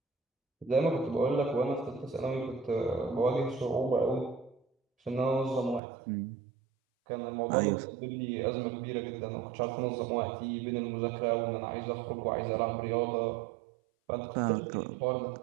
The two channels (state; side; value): drops out; left; at 5.8 s